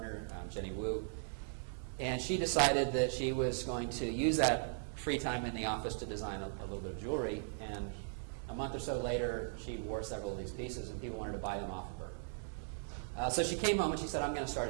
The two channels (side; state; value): left; silent; digital silence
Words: Jenny Wu, and she decided that she was going to use that free time in the office to design a little bit of jewelry. And a month or so later, she wore several of these pieces, and people wanted to buy them off of her. So she came home and she said, I'm going to start